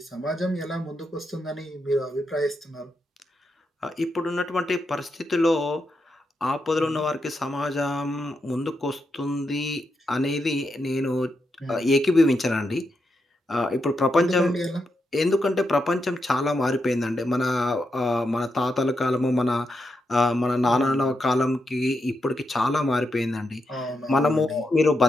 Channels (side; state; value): both; normal; correlation 0.84